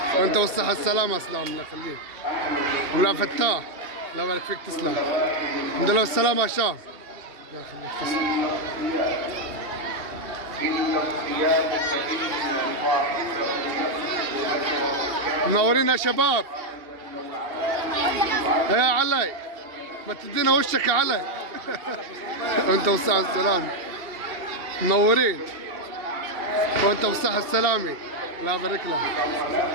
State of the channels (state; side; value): late; left; 2.8 ms